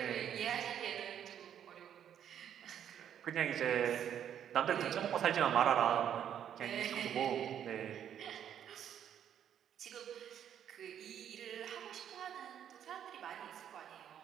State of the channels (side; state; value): left; quieter; 9.5 dB